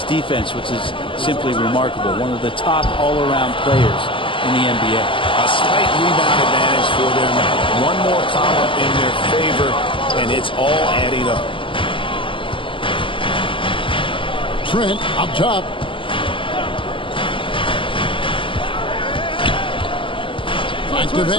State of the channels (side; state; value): right; late; 0.25 ms